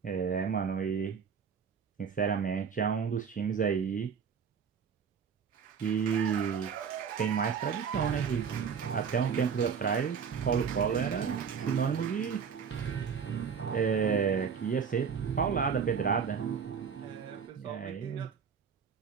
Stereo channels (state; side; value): quieter; left; 6.6 dB